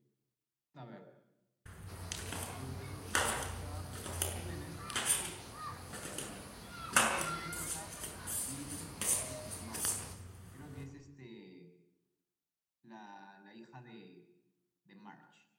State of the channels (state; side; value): identical; both; correlation 1.00